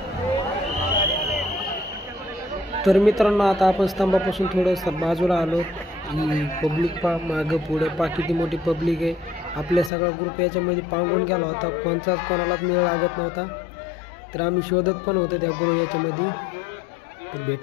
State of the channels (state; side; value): drops out; right; at 9.9 s